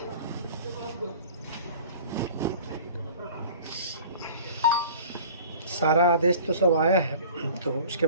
सारा आदेश तो सब आया है, तो उसके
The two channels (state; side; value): inverted; both; correlation -0.44